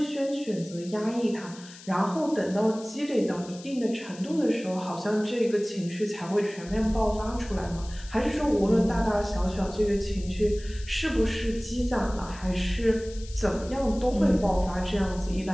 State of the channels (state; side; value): noise; left; hiss, 18 dB below the sound